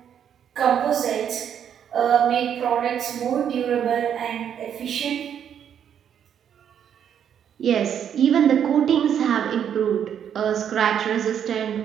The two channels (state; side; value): quieter; left; 8.8 dB